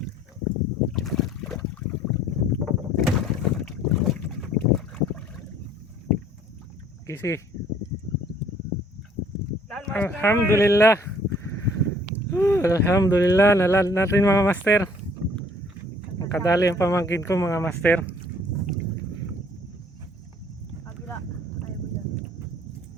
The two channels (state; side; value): normal; both; correlation 0.58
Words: Kisi. Alhamdulillah. Alhamdulillah, nalan natin mga master. Makadali ang pamangkin ko mga master. Kabila. Ayaw mo dyan.